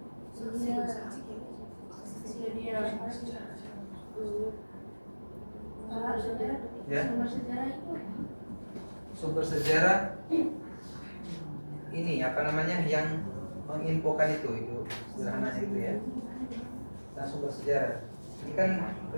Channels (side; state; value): both; inverted; correlation -1.00